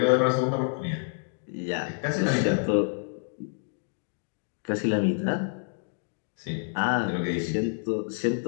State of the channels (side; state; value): right; silent; digital silence